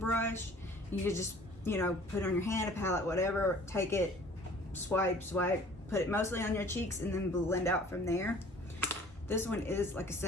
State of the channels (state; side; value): normal; both; correlation 0.50